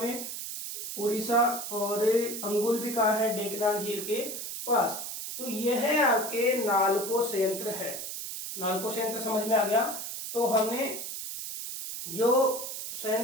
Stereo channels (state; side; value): noise; right; hiss, 6 dB below the sound